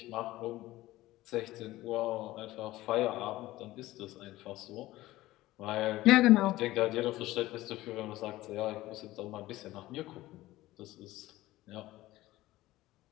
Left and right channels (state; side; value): quieter; right; 17.0 dB